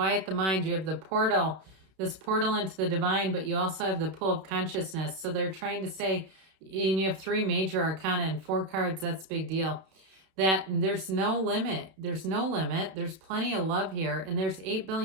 the mind. You have the portal, this portal into the divine, but you also have the pool of consciousness. So they're trying to say, and you have 3 major arcana and 4 cards, that's a big deal, that there's no limit. There's no limit. There's plenty of love here, and there's 8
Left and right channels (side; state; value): left; late; 31 ms